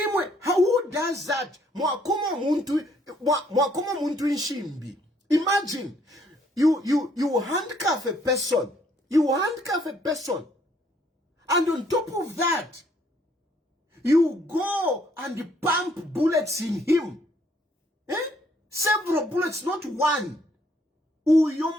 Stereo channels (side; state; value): both; normal; correlation 0.66